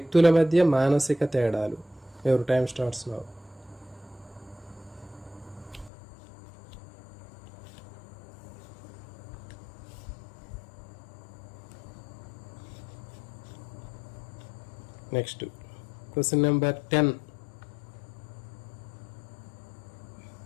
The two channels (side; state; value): right; drops out; at 5.9 s